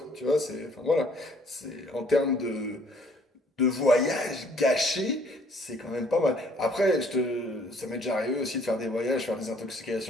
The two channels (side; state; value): both; normal; correlation 0.60